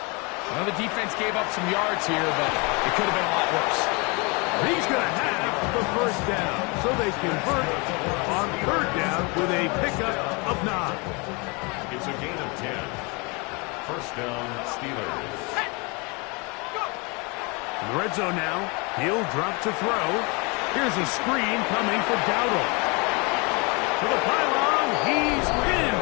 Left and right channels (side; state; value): right; quieter; 29.6 dB